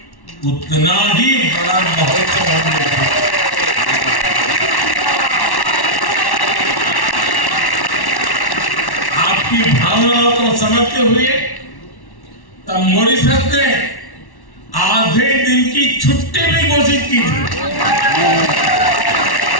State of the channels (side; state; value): right; late; 1.1 ms